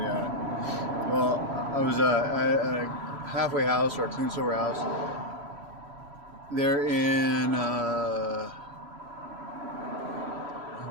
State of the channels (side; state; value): left; late; 3.0 ms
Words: Well, I was at a halfway house or a clean sober house. They're in what